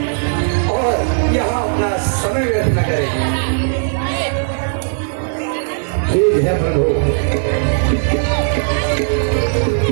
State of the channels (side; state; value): left; silent; digital silence